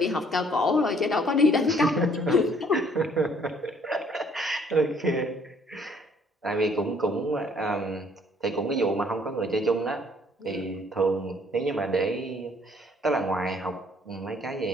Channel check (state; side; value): normal; both; correlation 0.62